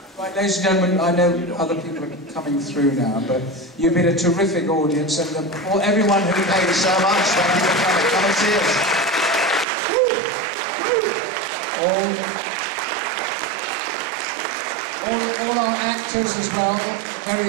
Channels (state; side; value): drops out; left; at 9.7 s